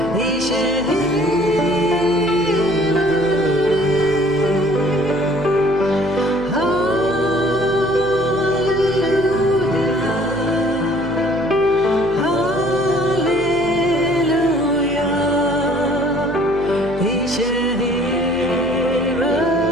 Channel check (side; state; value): right; noise; hum, 17 dB below the sound